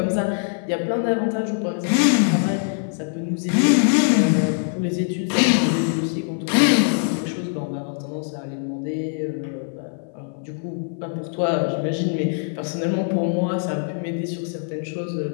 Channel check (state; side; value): silent; right; 58 dB below the other